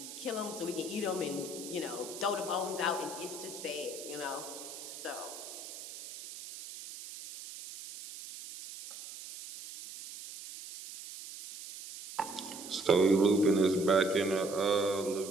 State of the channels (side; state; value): right; noise; hiss, 12 dB below the sound